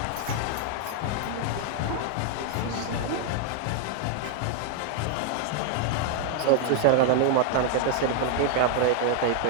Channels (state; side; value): different; both; correlation 0.00